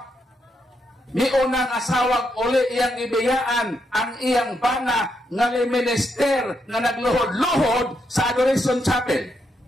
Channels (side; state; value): both; normal; correlation 0.80